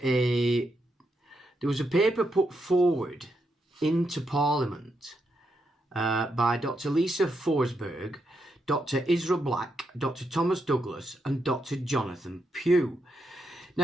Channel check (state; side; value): normal; both; correlation 0.82